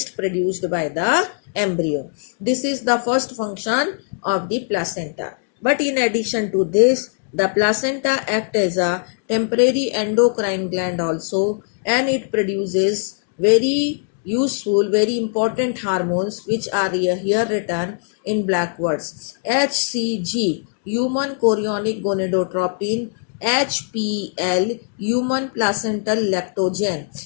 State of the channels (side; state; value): right; silent; digital silence